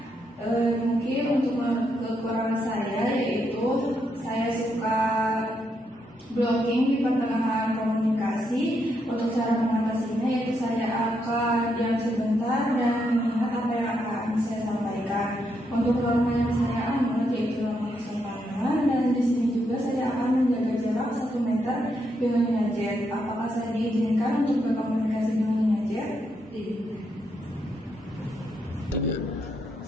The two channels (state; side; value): normal; both; correlation 0.79